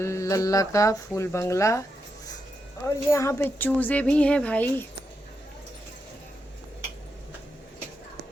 लल्ला का फूल बंगला। और यहाँ पे चूजे भी हैं भाई।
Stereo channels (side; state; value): both; normal; correlation 0.85